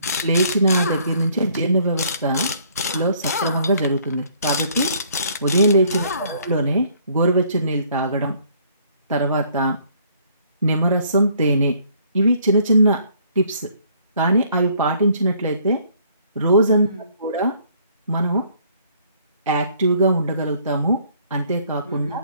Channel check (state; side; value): inverted; both; correlation -0.62